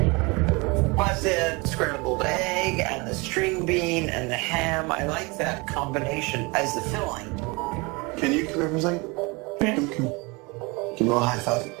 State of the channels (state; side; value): quieter; left; 27.0 dB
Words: Plus the scrambled egg and the string bean and the ham. I like that combination as the filling. Can you come here for a second? Yeah. Give me a little high five.